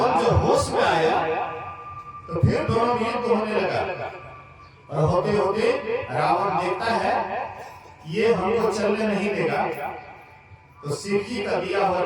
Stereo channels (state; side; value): identical; both; correlation 1.00